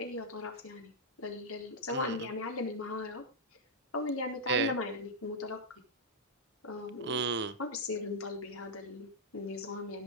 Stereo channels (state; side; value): normal; both; correlation -0.06